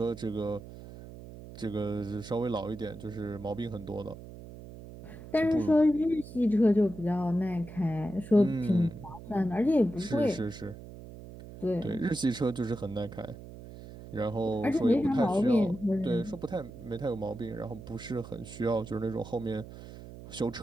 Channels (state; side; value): noise; right; hum, 14 dB below the sound